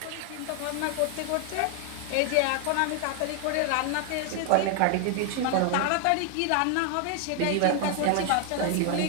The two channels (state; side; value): different; both; correlation 0.00